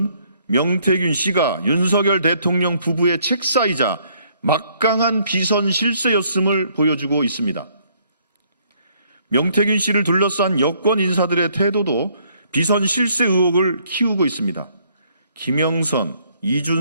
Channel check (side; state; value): both; inverted; correlation -0.66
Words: 명태균 씨가 윤석열 대통령 부부의 책사이자 막강한 비선 실세였음을 보여주고 있습니다. 명태균 씨를 둘러싼 여권 인사들의 태도도 비선 실세 의혹을 키우고 있습니다. 김영선,